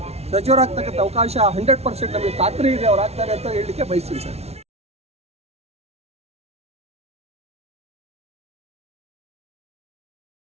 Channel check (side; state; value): left; late; 0.31 ms